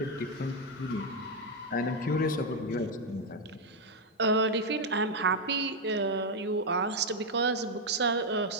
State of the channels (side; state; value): both; normal; correlation 0.02